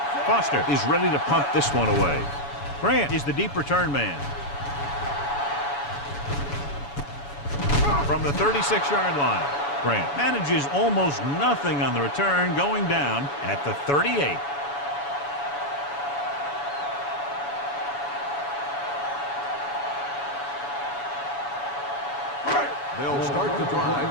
Foster is ready to punt this one away. Grant is the deep return man. From the 36-yard line. Grant manages almost nothing on the return, going down at the 38. They'll start the drive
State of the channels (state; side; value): late; right; 7.1 ms